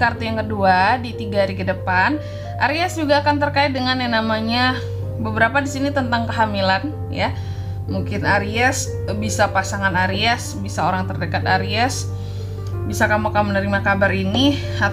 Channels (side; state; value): both; identical; correlation 1.00